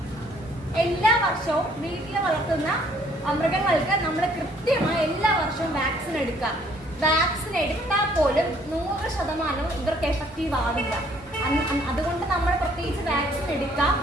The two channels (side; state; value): both; normal; correlation 0.62